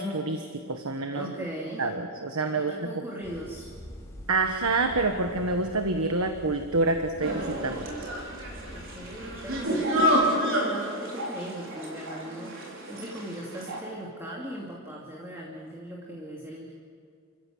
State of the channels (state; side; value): normal; both; correlation -0.05